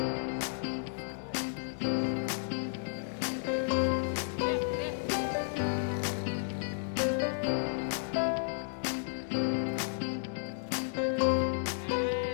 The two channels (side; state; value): right; silent; digital silence